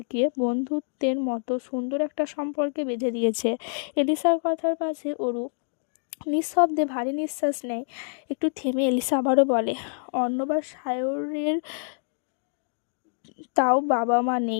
বন্ধুত্বের মতো সুন্দর একটা সম্পর্কে বেঁধে দিয়েছে। এলিসার কথার পাশে অরু নিঃশব্দে ভারী নিঃশ্বাস নেয়। একটু থেমে এলিসা আবারও বলে, অর্ণব আর সায়রের তাও বাবা মা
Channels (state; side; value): silent; right; digital silence